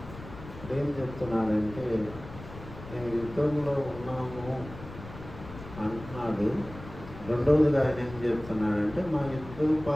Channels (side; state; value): left; noise; rumble, 14 dB below the sound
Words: ఏం చెప్తున్నాడంటే, మేము యుద్ధంలో ఉన్నాము అంటున్నాడు. రెండవదిగా ఆయన ఏం చెప్తున్నాడంటే, మా